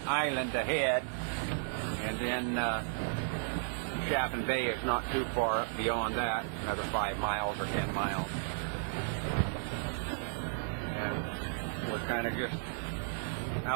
island ahead. And then Chaffin Bay is not too far beyond that, another 5 miles or 10 miles. We're kind of just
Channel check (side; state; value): left; silent; 55 dB below the other